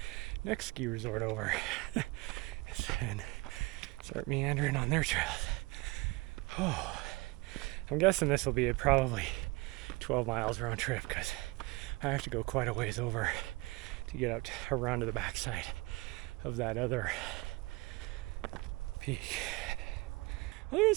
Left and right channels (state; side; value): quieter; left; 23.6 dB